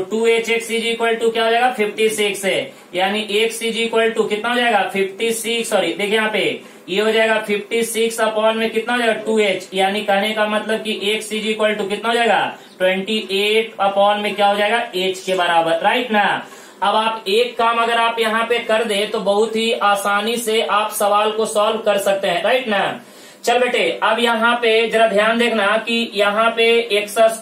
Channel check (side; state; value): both; identical; correlation 1.00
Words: 2hx इज इक्वल टू क्या हो जाएगा 56 है, यानी x इज इक्वल टू कितना हो जाएगा 56। सॉरी देखिए यहाँ पे ये हो जाएगा 56 अपॉन में कितना हो जाएगा 2h, यानी कहने का मतलब कि x इज इक्वल टू कितना हो जाएगा 28 अपॉन में क्या हो जाएगा h के बराबर, राइट ना। अब आप एक काम अगर आप यहाँ पे कर दे तो बहुत ही आसानी से आप सवाल को सॉल्व कर सकते हैं, राइट ना। चल बेटे, अब यहाँ पे जरा ध्यान देखना कि यहाँ पे एक्स